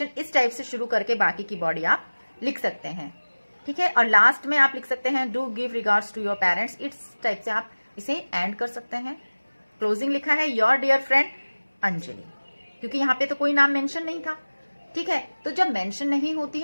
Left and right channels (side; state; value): both; inverted; correlation -1.00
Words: इस टाइप से शुरू करके बाकी की बॉडी आप लिख सकते हैं, ठीक है। और लास्ट में आप लिख सकते हैं do give regards to your parents, इस टाइप से आप इसे एंड कर सकते हैं। क्लोजिंग लिखा है योर डियर फ्रेंड अंजलि, क्योंकि यहाँ पे तो कोई नाम मेंशन नहीं था, ठीक है। तो जब मेंशन नहीं होती